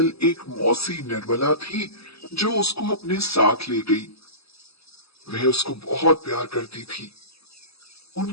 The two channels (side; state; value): right; late; 0.78 ms